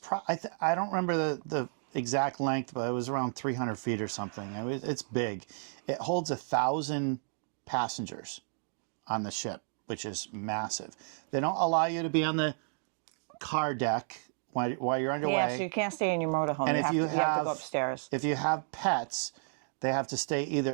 I don't remember the exact length, but it was around 300 feet or something. It's big. It holds 1,000 passengers on the ship, which is massive. They don't allow you to be on the car deck while you're underway. Yeah, so you can't stay in your motorhome. And you have to go upstairs. If you have pets, they have to stay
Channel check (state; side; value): silent; left; digital silence